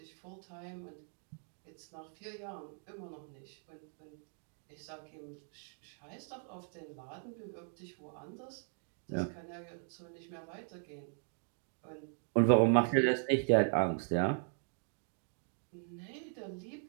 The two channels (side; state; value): left; silent; 52 dB below the other